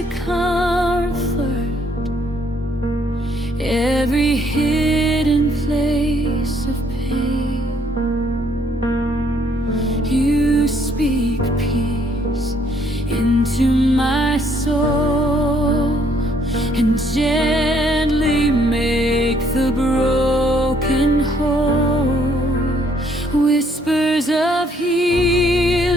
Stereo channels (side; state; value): both; normal; correlation 0.66